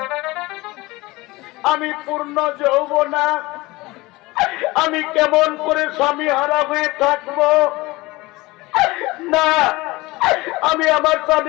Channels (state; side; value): quieter; right; 21.2 dB